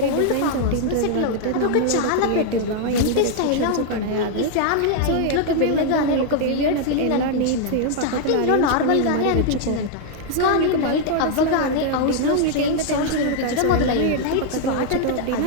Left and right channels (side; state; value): both; different; correlation 0.00